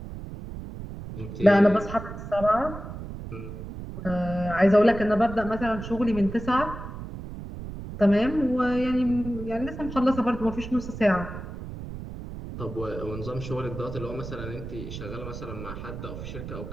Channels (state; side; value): noise; right; rumble, 10 dB below the sound